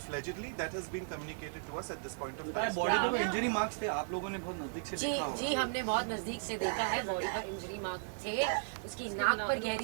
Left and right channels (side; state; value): left; silent; digital silence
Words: That has been communicated to us at this point of time. Body पे इंजरी मार्क्स थे, आप लोगों ने बहुत नजदीक से देखा होगा. जी हमने बहुत नजदीक से देखा है. बॉडी पर इंजरी मार्क थे, उसकी नाक पर